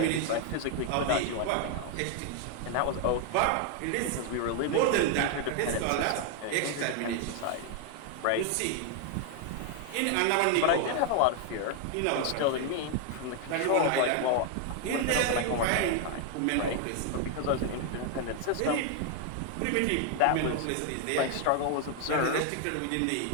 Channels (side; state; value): both; different; correlation 0.00